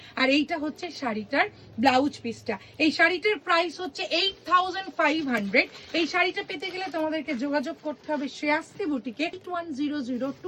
আর এইটা হচ্ছে শাড়িটার ব্লাউজ পিসটা। এই শাড়িটার প্রাইস হচ্ছে 8500। এই শাড়িটা পেতে গেলে তোমাদেরকে যোগাযোগ করতে হবে শ্রেয়াস্তি বুটিকে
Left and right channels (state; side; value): identical; both; correlation 1.00